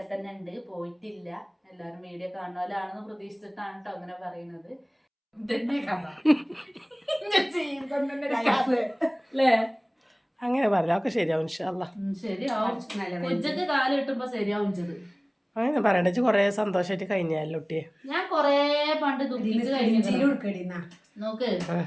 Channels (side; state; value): both; identical; correlation 1.00